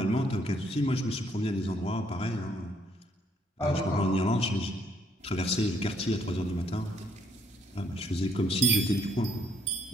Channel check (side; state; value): both; normal; correlation 0.68